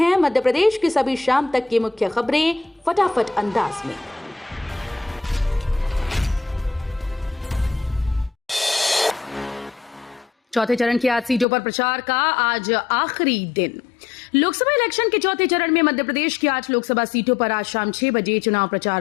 मध्य प्रदेश की सभी शाम तक की मुख्य खबरें फटाफट अंदाज में। चौथे चरण की 8 सीटों पर प्रचार का आज आखिरी दिन। लोकसभा इलेक्शन के चौथे चरण में मध्य प्रदेश की 8 लोकसभा सीटों पर आज शाम 6 बजे चुनाव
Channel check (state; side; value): drops out; right; at 11.5 s